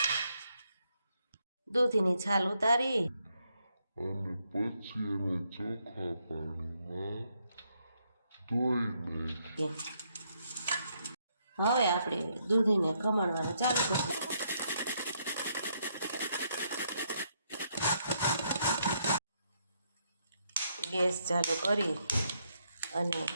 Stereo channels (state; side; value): inverted; both; correlation -0.75